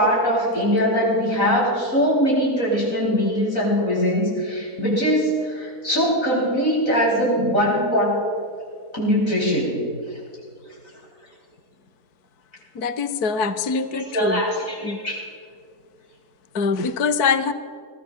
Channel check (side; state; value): right; late; 4.5 ms